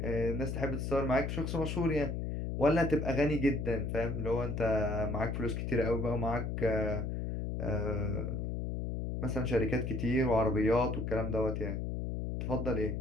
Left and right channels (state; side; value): noise; left; hum, 3 dB below the sound